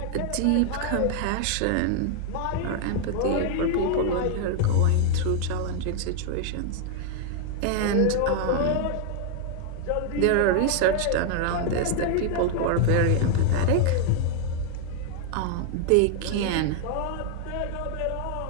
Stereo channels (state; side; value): different; both; correlation 0.00